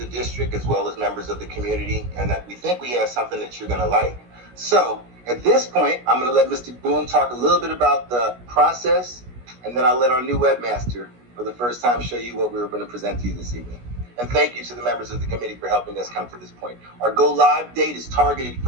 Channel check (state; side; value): late; left; 17 ms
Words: district as well as members of the community, and that we think we have something that you're going to like. So at this point, I'm going to let Mr. Boom talk a little bit about the process, and then I'll let our new webmaster for the first time show you what we were going to present to you this evening. And thank you to the members of the committee for helping us come to this point. Our go live date is targeted